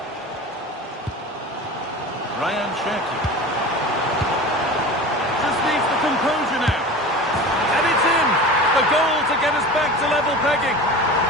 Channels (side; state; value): both; normal; correlation 0.34